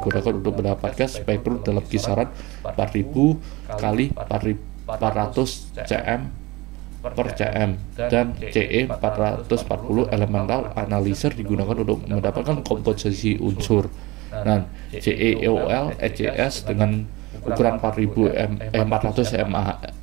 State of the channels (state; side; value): quieter; left; 22.2 dB